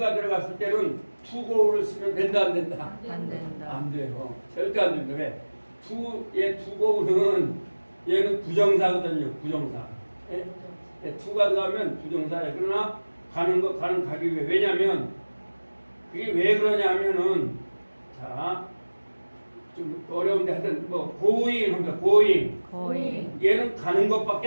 들어갔을 때는 투고를 쓰면 된다 안 된다? 안 돼요. 절대 안 됩니다. 왜? 투고는 얘는 부정사거든요. 부정사. 예? 투가 들어가면 부정사예요. 그러나 가는 것 가는 가기 위해. 왜냐면 그게 왜 그러냐 하면은 자 좀 어려운데 하여튼 뭐 going 합니다. going. 얘는 가는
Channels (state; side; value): inverted; both; correlation -1.00